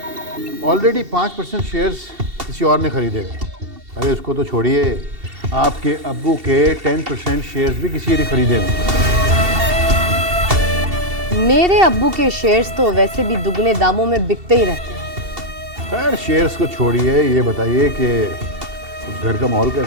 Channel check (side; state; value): left; late; 2.7 ms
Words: ऑलरेडी 5% शेयर्स किसी और ने खरीदे हैं। अरे उसको तो छोड़िए, आपके अब्बू के 10% शेयर्स भी किसी ने खरीदे हैं। मेरे अब्बू के शेयर्स तो वैसे भी दुगने दामों में बिकते ही रहते हैं। खैर शेयर्स को छोड़िए, ये बताइए कि उस घर का माहौल